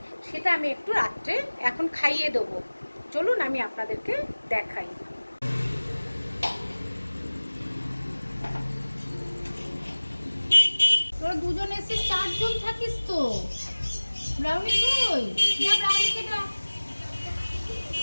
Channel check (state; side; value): inverted; both; correlation -1.00